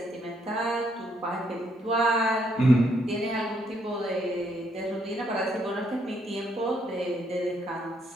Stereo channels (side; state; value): both; normal; correlation 0.73